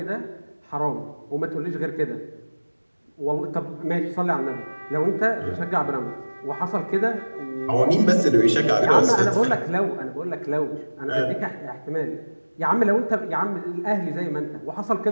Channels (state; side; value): inverted; both; correlation -1.00